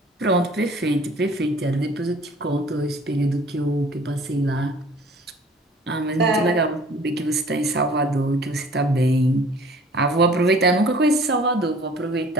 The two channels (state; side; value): normal; both; correlation 0.51